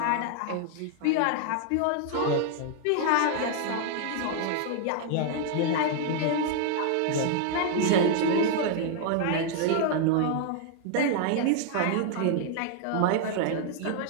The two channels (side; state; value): both; different; correlation 0.00